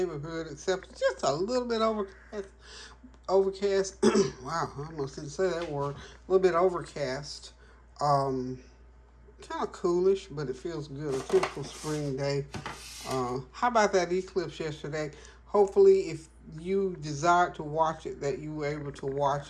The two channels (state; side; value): identical; both; correlation 1.00